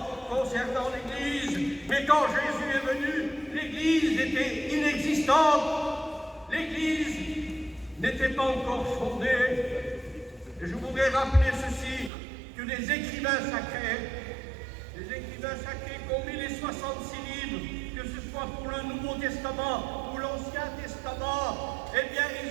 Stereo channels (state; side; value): drops out; left; at 12.1 s